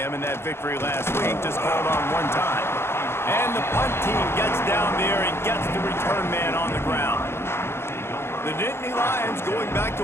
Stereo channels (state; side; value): late; right; 0.12 ms